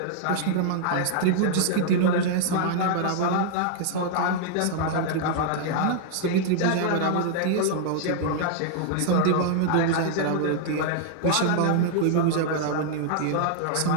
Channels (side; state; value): both; different; correlation -0.01